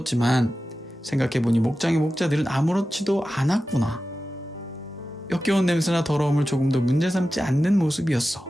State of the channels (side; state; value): both; normal; correlation 0.93